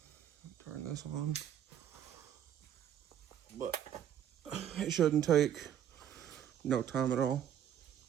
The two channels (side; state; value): left; quieter; 10.0 dB